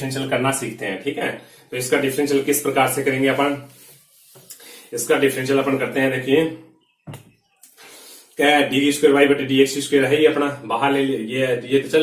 करना सीखते हैं, ठीक है। तो इसका डिफरेंशियल किस प्रकार से करेंगे अपन, इसका डिफरेंशियल अपन करते हैं, देखिए क्या डी स्क्वायर वाई बटे डी एक्स स्क्वायर है, ये अपना बाहर ले ये तो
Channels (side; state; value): both; identical; correlation 1.00